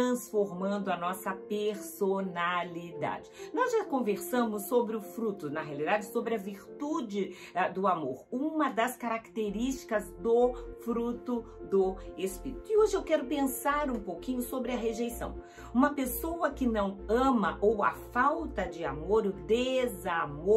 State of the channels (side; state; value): both; identical; correlation 1.00